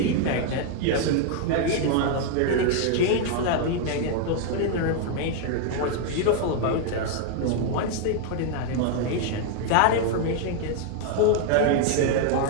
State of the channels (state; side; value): different; both; correlation 0.00